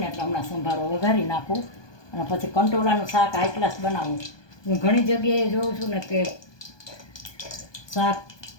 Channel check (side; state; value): right; late; 1.2 ms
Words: એટલે હમણાં સંભારો વઘારી નાખું, અને પછી કંટોલાનું શાક હાઈ ક્લાસ બનાવું. હું ઘણી જગ્યાએ જોઉં છું ને કે શાક